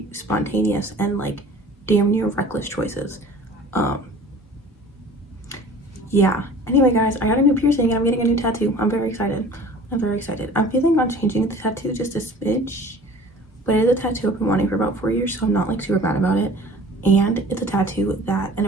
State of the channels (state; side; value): normal; both; correlation 0.45